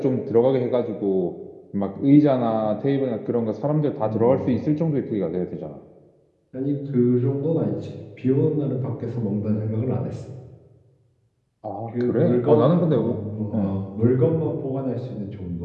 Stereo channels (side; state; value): both; identical; correlation 1.00